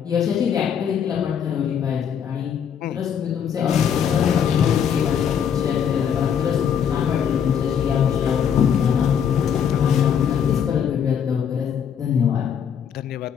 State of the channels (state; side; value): quieter; right; 8.1 dB